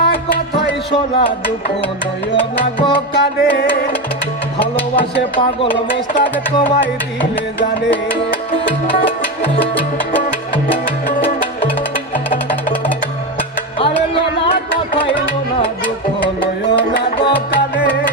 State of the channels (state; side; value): normal; both; correlation 0.16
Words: কথাই শোনা দুঃখ নয় না গো কানে ভালোবাসে পাগল মোস্তাক তোমায় দিলে জানে আরে লোনা কথাই লোনা দুঃখ নয় না গো কানে